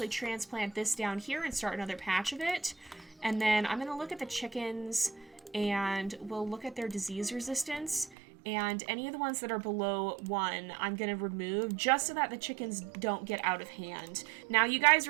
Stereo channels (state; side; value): drops out; left; at 8.2 s